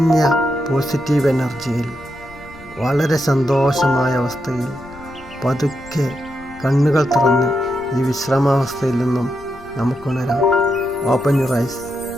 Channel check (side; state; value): left; noise; rumble, 22 dB below the sound